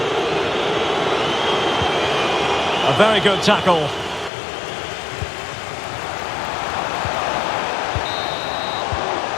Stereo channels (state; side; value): drops out; right; at 4.3 s